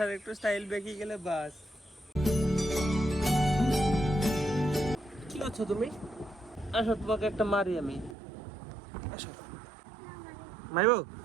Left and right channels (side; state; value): left; drops out; at 8.2 s